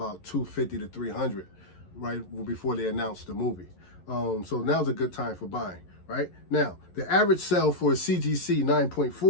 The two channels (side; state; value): right; late; 11 ms